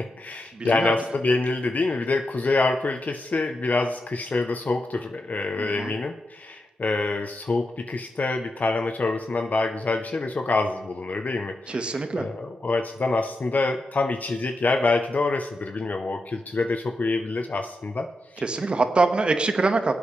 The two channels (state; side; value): normal; both; correlation 0.86